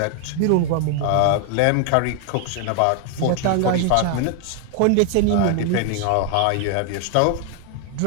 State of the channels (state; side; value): different; both; correlation 0.00